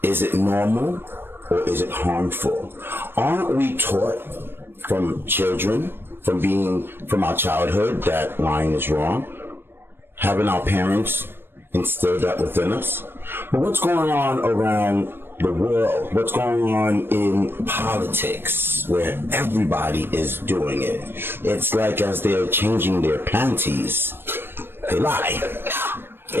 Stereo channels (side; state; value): left; late; 0.10 ms